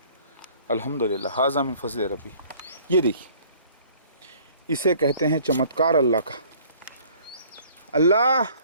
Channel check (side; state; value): both; inverted; correlation -0.54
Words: الحمدللہ. ھذا من فضل ربی. یہ دیکھیے، اسے کہتے ہیں چمتکار اللہ کا. اللہ